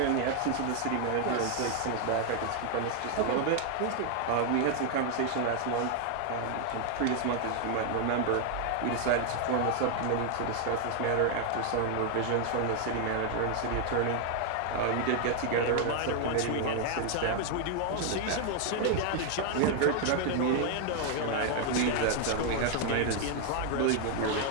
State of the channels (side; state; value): both; different; correlation 0.00